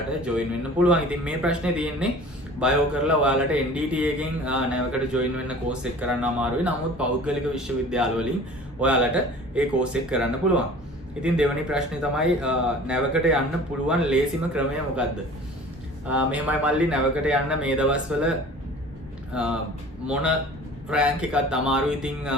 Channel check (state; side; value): normal; both; correlation 0.44